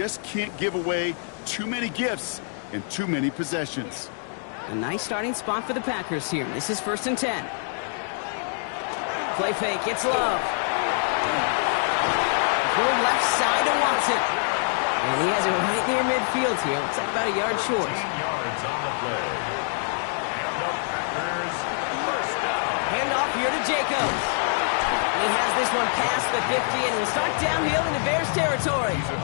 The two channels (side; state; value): right; silent; 59 dB below the other